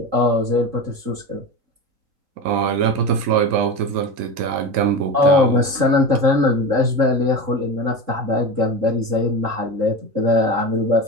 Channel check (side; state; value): left; late; 3.7 ms